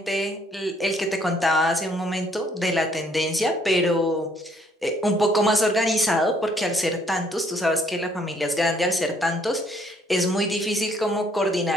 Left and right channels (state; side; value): normal; both; correlation 0.65